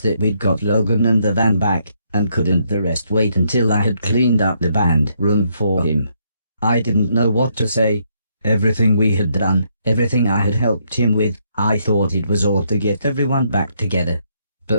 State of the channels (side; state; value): both; inverted; correlation -0.74